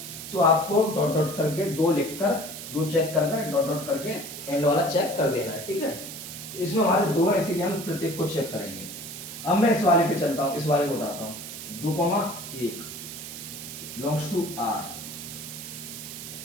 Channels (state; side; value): noise; right; hiss, 10 dB below the sound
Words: तो आपको डॉट डॉट करके 2 लिखकर 2 चेक करके डॉट डॉट करके एंड वाला चेक कर देना है, ठीक है। तो इसमें हमारे 2 है, इसीलिए हम प्रत्येक को चेक करेंगे। अब मैं इस वाले पे चलता हूँ, इस वाले को उठाता हूँ। 2,1 belongs to R